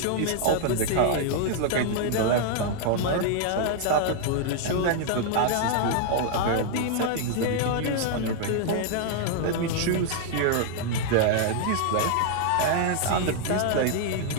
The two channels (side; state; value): both; different; correlation 0.00